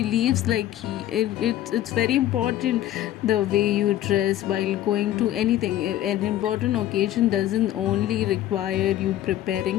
like it's very important the way you dress while going to anything. An important occasion doesn't only require you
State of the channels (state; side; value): quieter; right; 13.0 dB